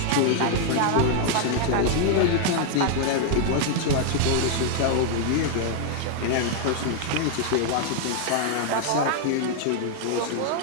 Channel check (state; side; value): different; both; correlation 0.00